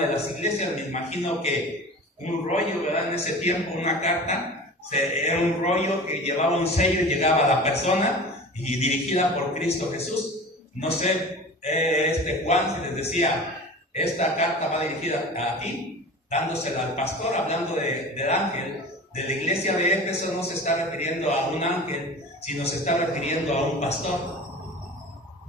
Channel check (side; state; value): both; normal; correlation 0.36